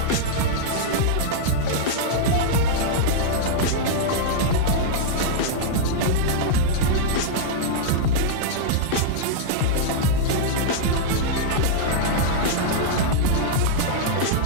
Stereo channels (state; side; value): different; both; correlation -0.02